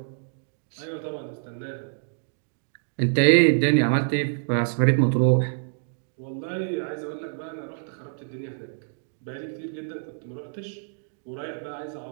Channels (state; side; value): silent; left; digital silence